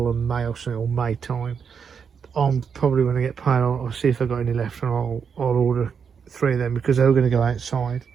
of May or something, or May time. I'm probably when I get paid, I'll see if I've got any left, and I'll order 3 of them because they're going to go outside.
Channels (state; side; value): quieter; left; 6.6 dB